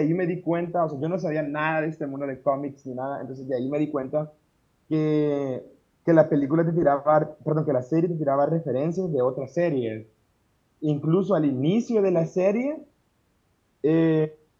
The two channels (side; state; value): both; identical; correlation 1.00